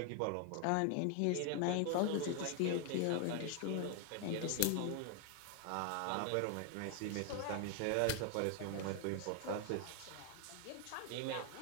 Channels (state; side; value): different; both; correlation 0.00